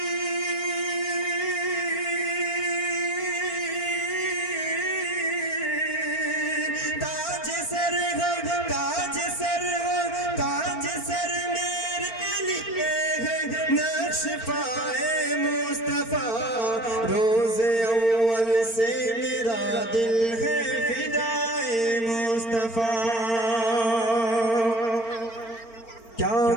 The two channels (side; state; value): right; late; 4.4 ms